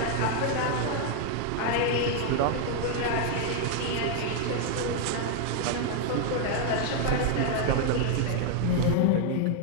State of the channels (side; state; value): both; different; correlation 0.00